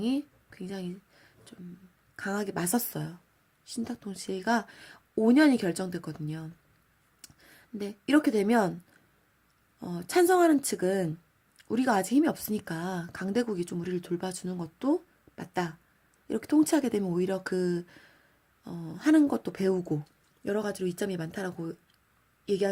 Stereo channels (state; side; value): identical; both; correlation 1.00